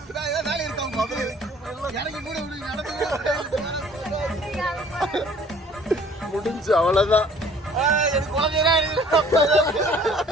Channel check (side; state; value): both; normal; correlation 0.54